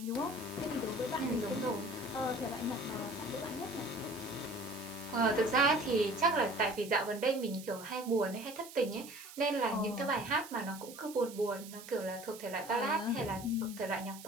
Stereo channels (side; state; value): right; noise; hiss, 15 dB below the sound